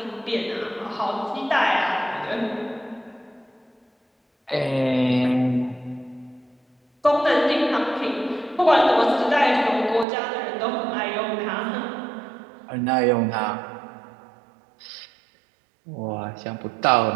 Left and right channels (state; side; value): drops out; left; at 10.1 s